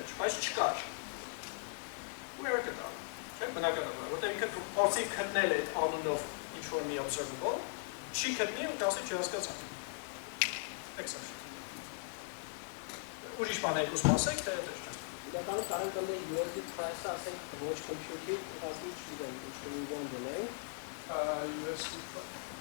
բայց չկար։ Ու error կտա, չէ՞, բնականաբար, որտեղ ինքը փորձի գտնել այդ անունով ինչ-որ մի observable, չի գտնի ու կասի չհասկացանք։ Exception։ Ուրիշ բան եք ուզում ասեք, թե դες չէ։ Իրականում կարենք կլինի USD price-ը ասենք ոչ computer-ի, ուղղակի չգիտեմ, ինչ-որ մի բան դնենք։ USD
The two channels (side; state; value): right; silent; 52 dB below the other